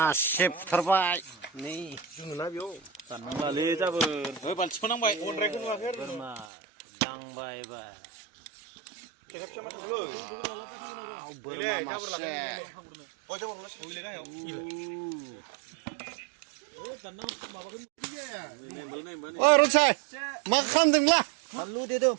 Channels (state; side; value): drops out; left; at 6.5 s